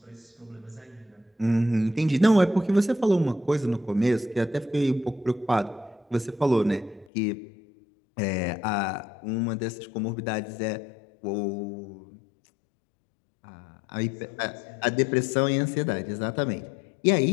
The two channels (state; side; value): drops out; right; at 7.1 s